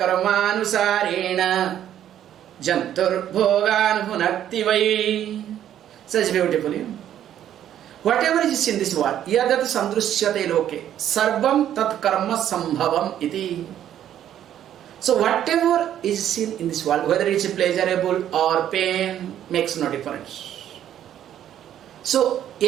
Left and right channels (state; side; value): quieter; left; 10.8 dB